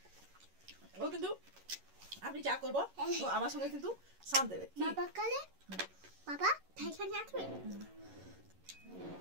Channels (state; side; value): late; left; 11 ms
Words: ও কিন্তু আমি যা করবো ও আমার সঙ্গে কিন্তু সাথ দেবে। বাবা কালে বাবা ঠাইখানে আসবে।